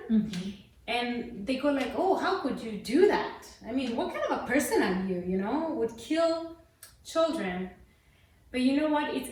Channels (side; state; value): both; identical; correlation 1.00